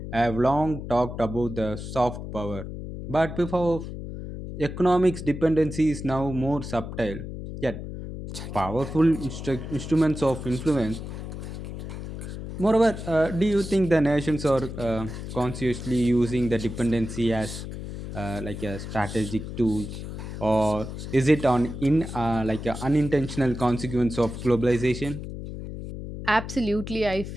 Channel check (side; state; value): left; noise; hum, 8 dB below the sound